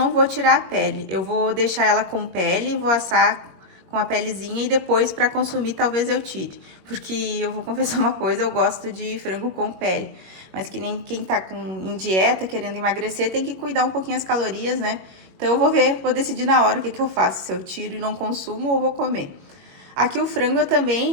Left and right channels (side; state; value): left; late; 21 ms